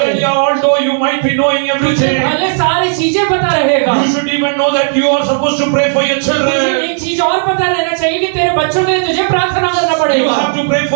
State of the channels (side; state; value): left; silent; digital silence